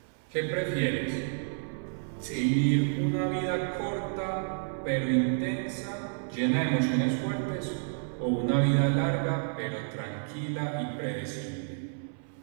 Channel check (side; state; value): left; silent; 58 dB below the other